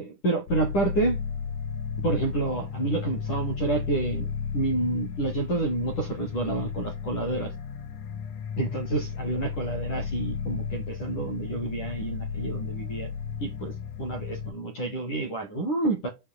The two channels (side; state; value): right; late; 10 ms